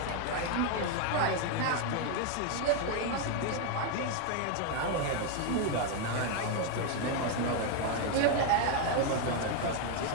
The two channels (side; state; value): both; different; correlation 0.01